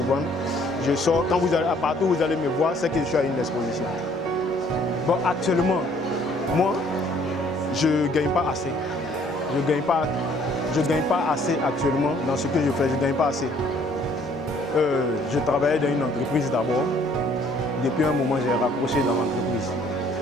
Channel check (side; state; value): both; normal; correlation 0.61